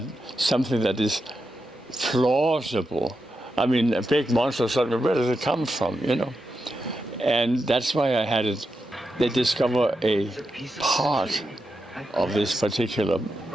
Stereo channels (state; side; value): normal; both; correlation 0.87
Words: something that is plausible? I mean, a big monster, where does it come from, And that's why I had it. They discover a part of this particular